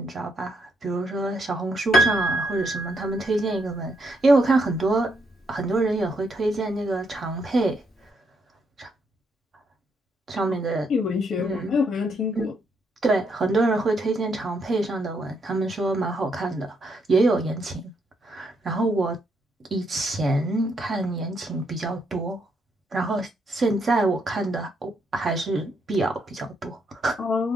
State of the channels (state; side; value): normal; both; correlation 0.76